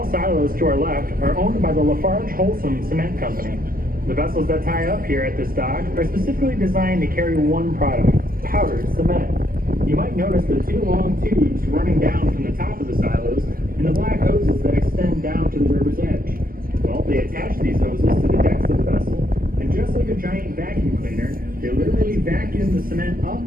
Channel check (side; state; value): left; late; 0.42 ms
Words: silos to our left are owned by the Lafarge Holcim Cement Company. The vessels that tie up here at this dock are specifically designed to carry one product, powdered cement. You might notice the 2 long tubes running down from the top of the silos and the black hoses that extend down to the river's edge. Well, they attach these hoses to the decks of the vessel, and just like a giant vacuum cleaner, they literally vacuum the cement up,